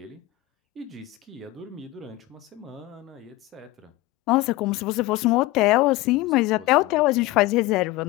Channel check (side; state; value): right; quieter; 18.5 dB